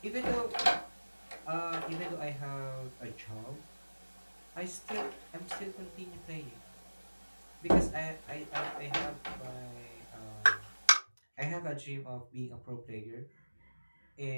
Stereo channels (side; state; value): both; inverted; correlation -1.00